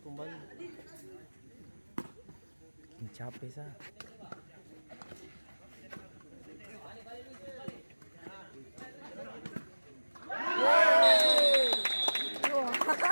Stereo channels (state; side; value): inverted; both; correlation -1.00